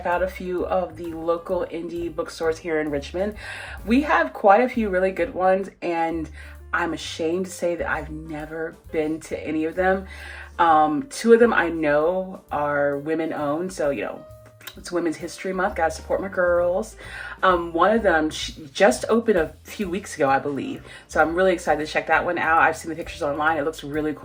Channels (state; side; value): identical; both; correlation 1.00